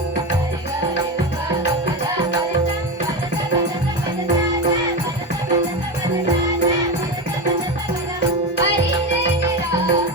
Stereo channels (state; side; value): normal; both; correlation 0.18